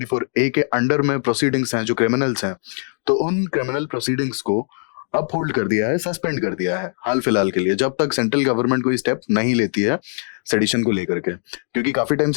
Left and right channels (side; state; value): right; silent; 65 dB below the other